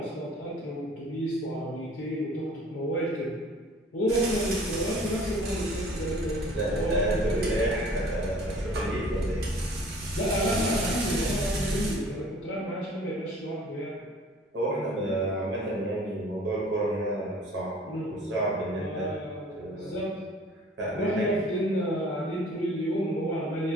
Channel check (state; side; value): normal; both; correlation 0.50